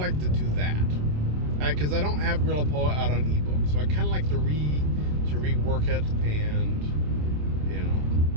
to do that because I don't have guerrilla poet out on ebook, so I kind of like to rework it and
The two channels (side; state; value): left; late; 27 ms